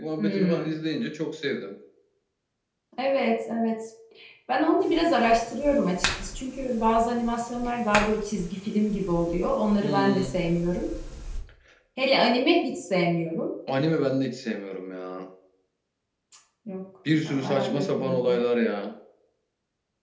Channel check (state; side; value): identical; both; correlation 1.00